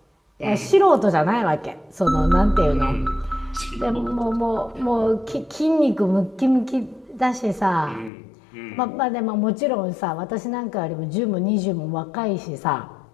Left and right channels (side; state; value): right; drops out; at 8.1 s